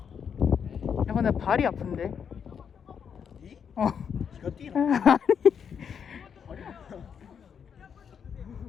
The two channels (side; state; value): right; quieter; 7.3 dB